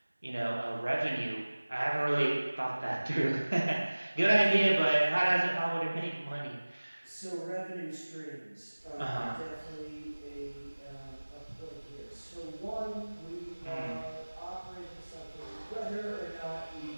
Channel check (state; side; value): inverted; both; correlation -1.00